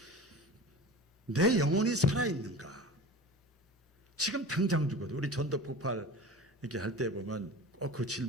내 영혼이 살아있는가. 지금 당장 죽어도 우리 전도폭발 이렇게 할 때 보면 그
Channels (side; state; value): both; normal; correlation 0.35